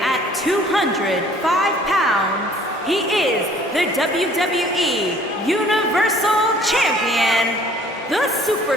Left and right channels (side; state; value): both; normal; correlation 0.55